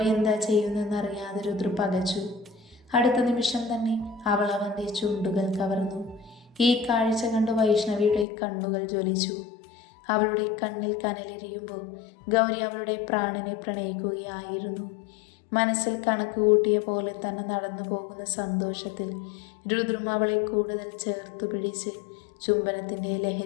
എന്താ ചെയ്യുന്നതെന്നറിയാതെ രുദ്ര പകച്ചു. അടുത്ത നിമിഷം തന്നെ അവൾ അവൻ്റെ ചുണ്ടുകൾ കവർന്നു. ഈ കാഴ്ച കണ്ട് വൈഷ്ണവിയുടെ കണ്ണുകൾ ജ്വലിച്ചു. അവളുടെ കണ്ണിൽ കനലെരിയുമ്പോൾ ഗൗരി അവളുടെ പ്രാണനെ പ്രണയിക്കുകയായിരുന്നു. മനസ്സിൽ കണക്ക് കൂട്ടിയ പോലെ തന്നെ നടന്നു പോകുന്ന സന്തോഷത്തിൽ രുദ്രം അവളെ കൂടുതൽ ചേർത്തു പിടിച്ച് ചുംബനത്തിൻ്റെ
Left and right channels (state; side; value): drops out; right; at 8.2 s